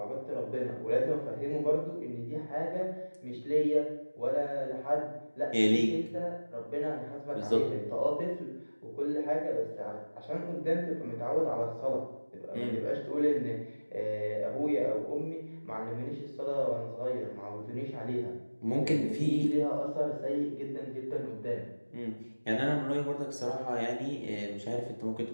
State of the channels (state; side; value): inverted; both; correlation -1.00